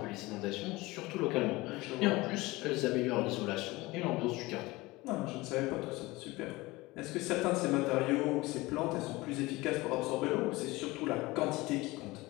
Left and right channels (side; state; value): right; quieter; 21.1 dB